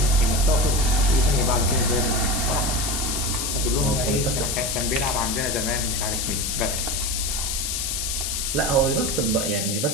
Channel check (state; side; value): noise; left; hiss, 1 dB below the sound